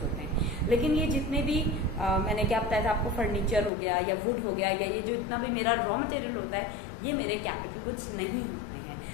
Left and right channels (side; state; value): right; drops out; at 3.7 s